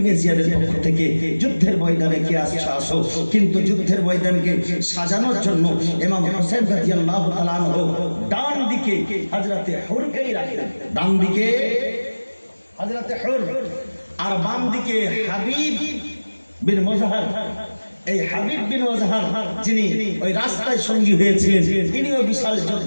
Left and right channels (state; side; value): inverted; both; correlation -1.00